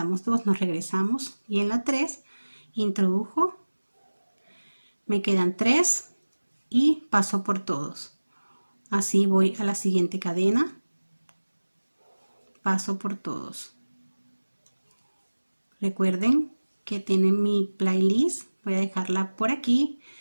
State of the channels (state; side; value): inverted; both; correlation -1.00